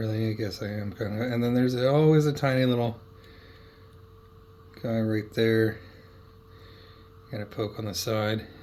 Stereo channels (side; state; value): both; identical; correlation 1.00